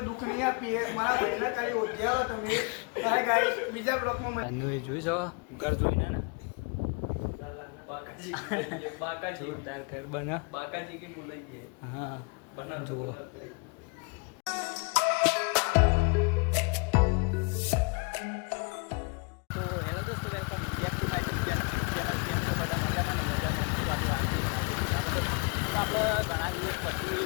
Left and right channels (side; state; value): right; quieter; 32.8 dB